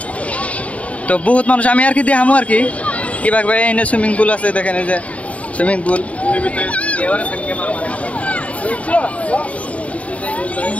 তো বহুত মানুষ। আমি আর কি দেখামো আর কি কিভাবে এনে সুইমিং পুল আছে, দেখেন এই যে সুইমিং পুল।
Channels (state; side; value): late; right; 0.066 ms